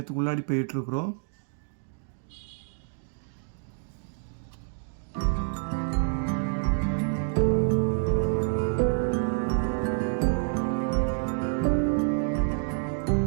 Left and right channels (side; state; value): left; silent; digital silence